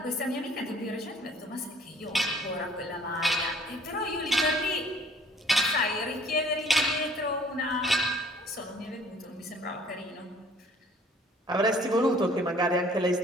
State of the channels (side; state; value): both; normal; correlation 0.56